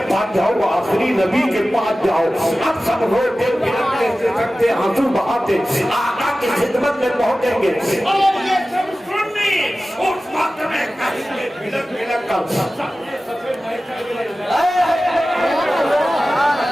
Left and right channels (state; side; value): normal; both; correlation 0.96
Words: पास जाओ, आखिरी नबी के पास जाओ। अब सब रोते बिलखते सकते आंसू बहाते आका की खिदमत में पहुंचेंगे और ये सब सुन्नी उस वक्त में कहेंगे बिलख बिलख कर सफेद